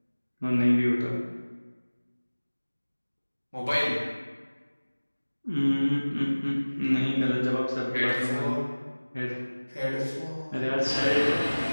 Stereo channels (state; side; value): inverted; both; correlation -1.00